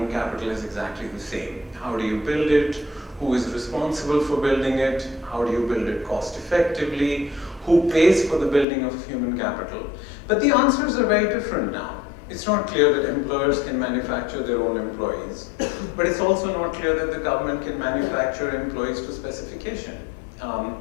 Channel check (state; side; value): drops out; right; at 8.7 s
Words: capital is exactly the same. How do you build it? Who is responsible for building it? How do you build it cost effectively? Who pays for the building of human capital? But the answers are very different now. It's not clear that employers can manufacture their own employees, but it's also not clear that the government can manufacture employees to specification.